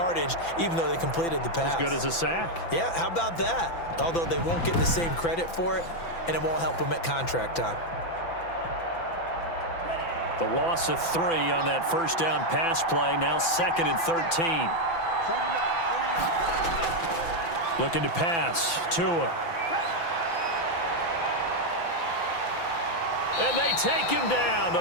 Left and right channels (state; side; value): late; right; 5.9 ms